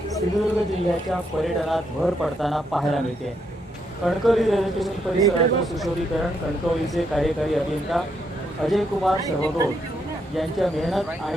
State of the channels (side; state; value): both; normal; correlation 0.77